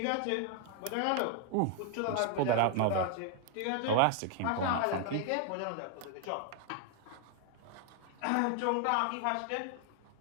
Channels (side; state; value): both; different; correlation 0.00